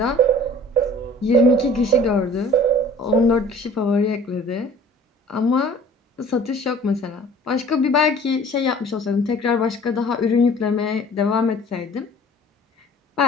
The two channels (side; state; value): both; normal; correlation 0.48